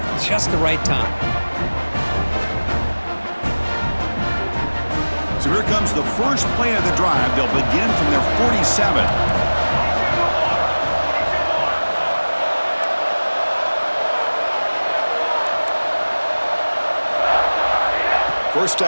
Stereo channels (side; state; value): both; inverted; correlation -1.00